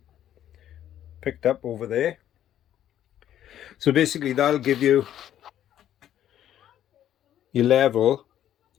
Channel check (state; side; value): quieter; right; 11.2 dB